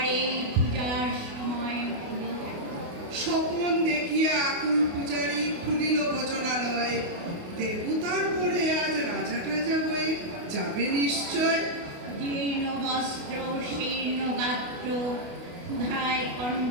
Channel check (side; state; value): left; late; 28 ms